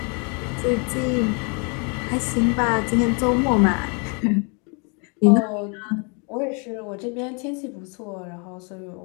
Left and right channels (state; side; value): quieter; right; 35.1 dB